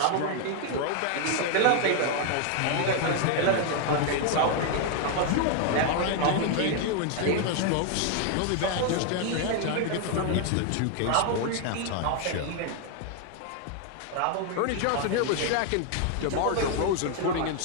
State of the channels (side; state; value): both; different; correlation 0.01